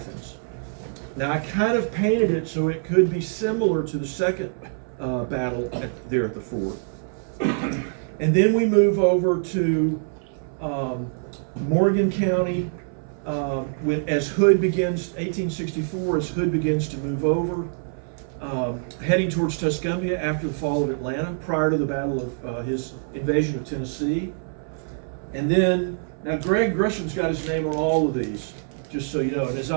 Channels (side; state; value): left; silent; 62 dB below the other